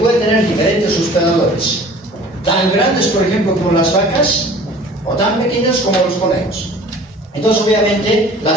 tener diferentes hospedadores, tan grandes, por ejemplo, como las vacas, o tan pequeñas como los conejos. Entonces, obviamente,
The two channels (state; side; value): normal; both; correlation 0.47